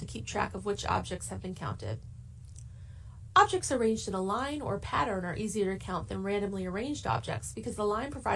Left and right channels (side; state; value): both; identical; correlation 1.00